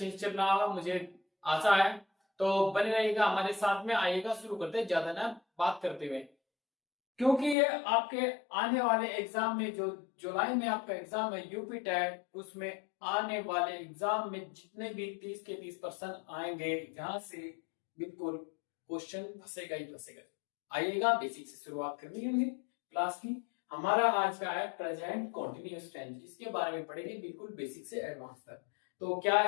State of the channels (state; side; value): drops out; right; at 7.6 s